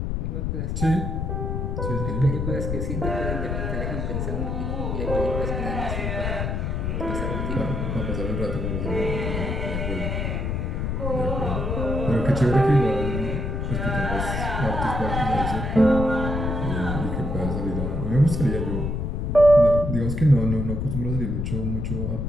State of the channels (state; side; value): noise; left; rumble, 1 dB below the sound